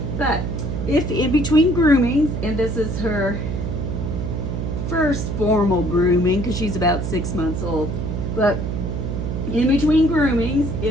But if in between groomings, and this is her first formal grooming because she's about 6 months old, but in between groomings,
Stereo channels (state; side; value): noise; right; hum, 3 dB below the sound